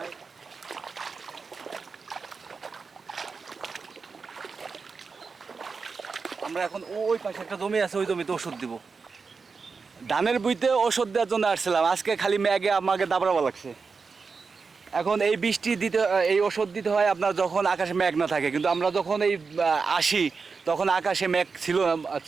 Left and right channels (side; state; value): left; quieter; 4.9 dB